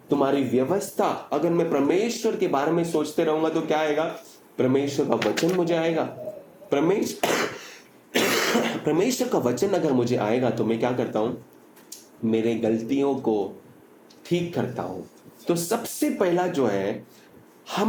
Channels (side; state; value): both; identical; correlation 1.00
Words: तुम्हारी व्यवस्था, अगर मैं परमेश्वर के बारे में सोचते रहूंगा तो क्या आएगा? परमेश्वर का वचन मुझे आएगा। परमेश्वर का वचन अगर मुझे आएगा तो मैं क्या करता हूं? मेरे गलतियों को ठीक करता हूं। तो सबसे पहला जो है,